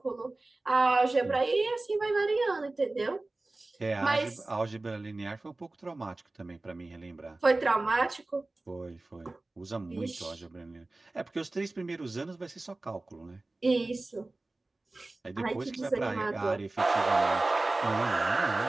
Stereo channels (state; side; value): quieter; left; 3.0 dB